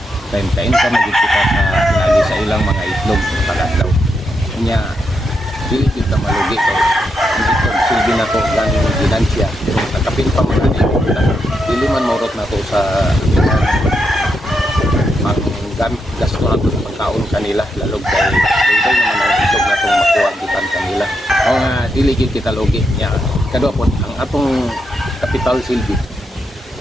Kay kain ka magid kita sa lagi sa ilang mga itlog tagadlaw. Nya dili kita malugi kay ang itlog silbi nato ganing ginansya pero nakapin pa man ani dili man maurot nato sa gamit gasto na itong pagkaon kanila lalog kay dito naman ang itlog na itong makuha gikan kanila o nga diligid kita logi niya kadua po ang atong capital silbi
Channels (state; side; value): normal; both; correlation 0.82